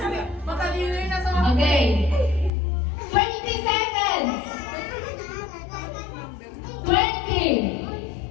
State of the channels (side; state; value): right; drops out; at 2.5 s